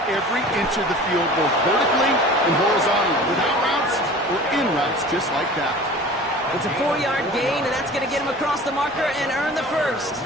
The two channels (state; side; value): normal; both; correlation 0.41